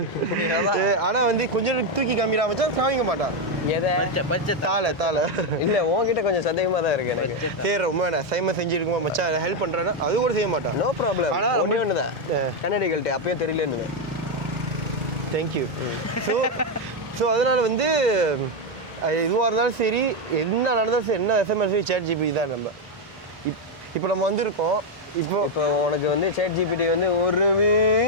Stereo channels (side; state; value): both; normal; correlation 0.04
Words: ஆனா வந்து கொஞ்சம் தூக்கி காமிடா வச்சா சாமிக்க மாட்டான். எதை? தாள இல்ல உன்கிட்ட கொஞ்சம் சந்தேகமா தான் இருக்கு எனக்கு. சரி, ரொம்ப சைம செஞ்சிருக்குமா மச்சான், ஹெல்ப் பண்றேன்னா அது கூட செய்ய மாட்டான். No problem. ஆனா ஒண்ணே ஒண்ணுதான், கன்னடிகள்கிட்ட அப்பயே தெரியலன்னு. தேங்க்யூ. ஸோ ஸோ அதனால் வந்து எதுவாக இருந்தாலும் சரி, என்ன நடந்தாலும் சரி, என்ன எஸ்எம்எஸ் ChatGPT தான். நம்ம இப்போ நம்ம வந்திருக்கோம். இப்போ உனக்கு வந்து ChatGPT வந்து